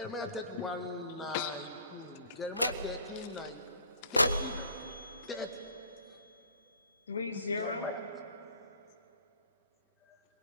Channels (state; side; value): inverted; both; correlation -0.52